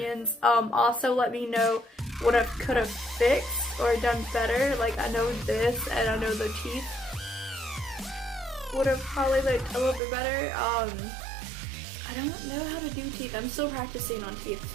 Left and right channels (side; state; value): left; drops out; at 10.0 s